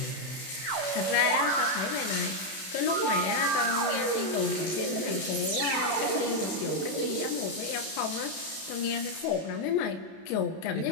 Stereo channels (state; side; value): late; right; 32 ms